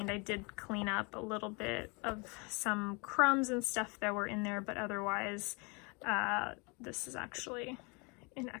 I did clean up a little bit of some crumbs and stuff that were in there, but otherwise this is actually in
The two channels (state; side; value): quieter; right; 30.9 dB